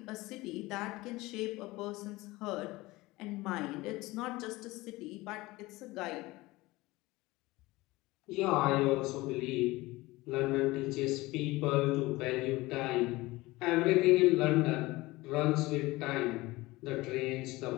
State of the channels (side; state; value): right; quieter; 20.4 dB